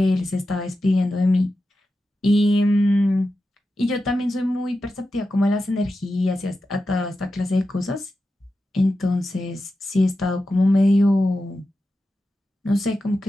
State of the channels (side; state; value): both; normal; correlation 0.91